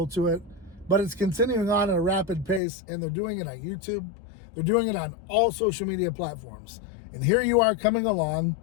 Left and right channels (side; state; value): right; drops out; at 2.6 s